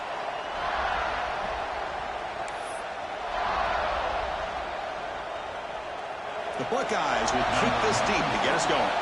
The Buckeyes will kick this deep to get us going.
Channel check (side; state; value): both; identical; correlation 1.00